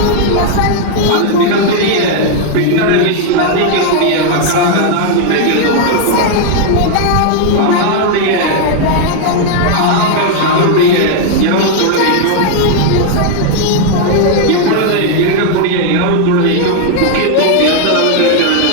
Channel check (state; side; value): different; both; correlation 0.00